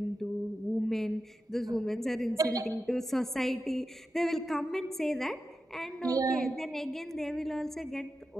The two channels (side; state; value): both; normal; correlation 0.91